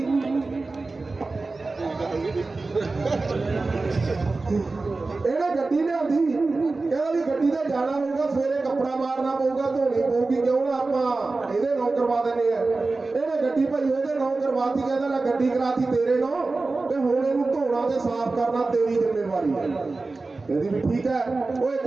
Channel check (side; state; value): left; quieter; 3.6 dB